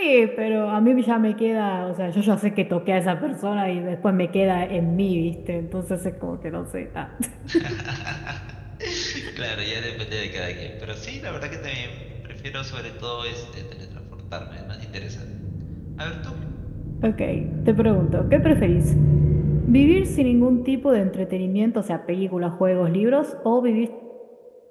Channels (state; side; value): identical; both; correlation 1.00